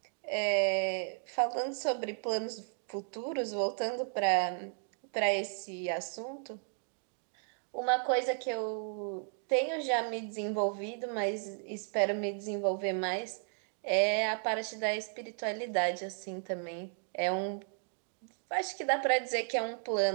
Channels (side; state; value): left; silent; 55 dB below the other